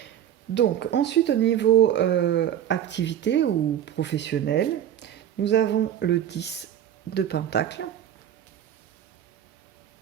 Donc, ensuite, au niveau activité ou professionnel, nous avons le 10 de Pentacle,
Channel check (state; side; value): quieter; left; 10.4 dB